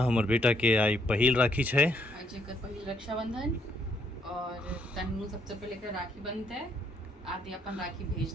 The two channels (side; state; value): both; normal; correlation 0.71